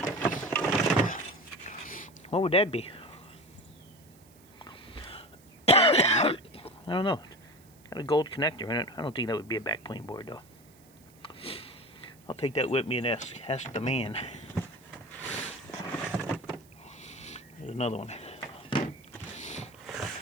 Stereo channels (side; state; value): right; noise; hiss, 27 dB below the sound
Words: What would that be? I don't know. Got a gold connector in it. I don't think that would be a backplane board though. I'll take that with me and ask the man. There's another one.